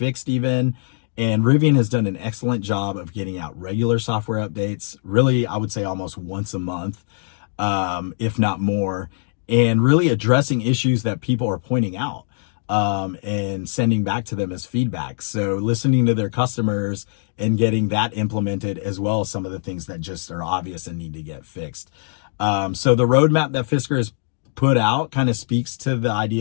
even. And Rivian has done an excellent job of getting out regular software updates. Really, I would say almost once a month, if not more, and really addressing issues that people are pointing out and sending back to them as feedback. So listening to their customers and getting that implemented, as well as some of the things that just are obvious and need to get fixed. So the roadmap that Fisker has put out kind of speaks to the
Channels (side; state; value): right; silent; digital silence